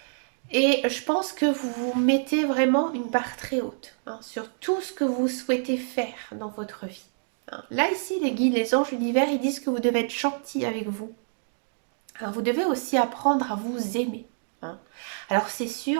Et je pense que vous vous mettez vraiment une barre très haute hein, sur tout ce que vous souhaitez faire dans votre vie. Hein. Là, ici, les guides, les anges, l'univers, ils disent que vous devez être gentil avec vous. Alors, vous devez aussi apprendre à vous aimer. Hein. Alors, c'est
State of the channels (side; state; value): left; silent; digital silence